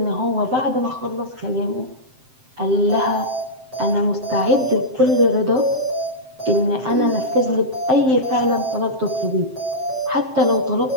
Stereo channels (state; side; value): late; left; 7.7 ms